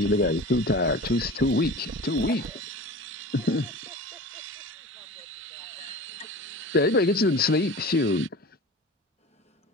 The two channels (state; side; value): normal; both; correlation 0.36